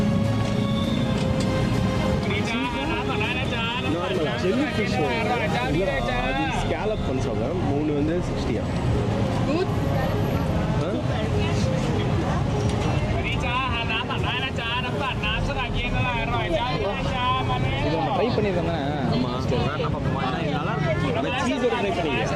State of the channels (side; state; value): both; identical; correlation 1.00